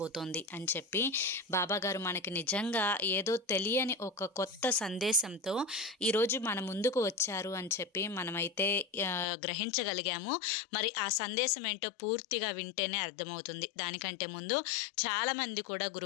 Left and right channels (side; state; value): right; drops out; at 9.2 s